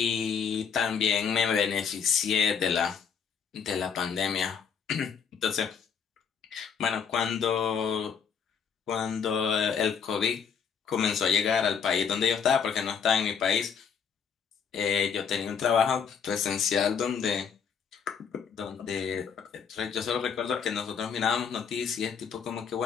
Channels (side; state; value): right; quieter; 6.8 dB